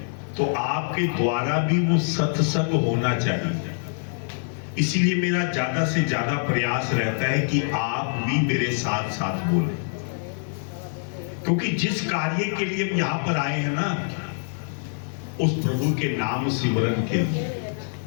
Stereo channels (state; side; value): silent; right; 62 dB below the other